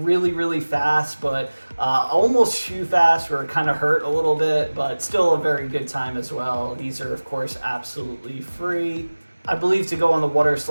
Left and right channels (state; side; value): inverted; both; correlation -1.00